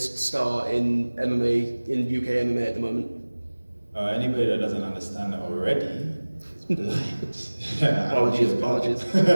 star in MMA, in UK MMA at the moment? Anybody that doesn't understand that already is blind. Apologies.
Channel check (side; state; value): both; inverted; correlation -1.00